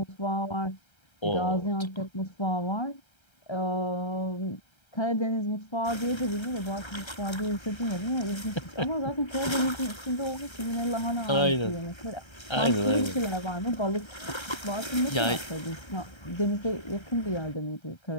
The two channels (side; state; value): right; late; 1.3 ms